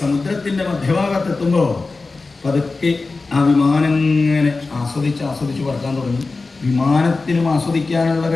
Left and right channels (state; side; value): quieter; right; 3.8 dB